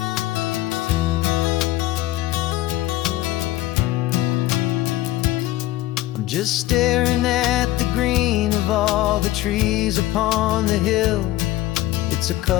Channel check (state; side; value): quieter; right; 15.8 dB